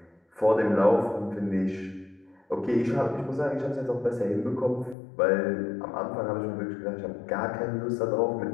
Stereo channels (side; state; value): right; drops out; at 5.0 s